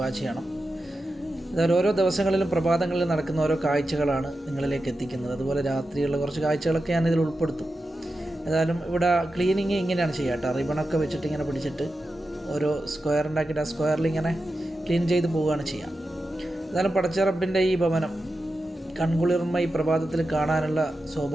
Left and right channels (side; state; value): both; normal; correlation 0.91